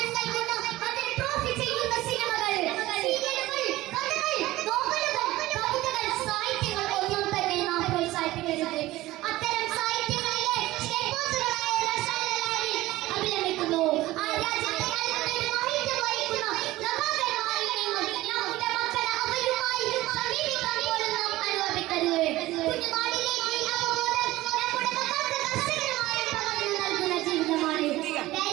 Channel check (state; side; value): quieter; left; 17.4 dB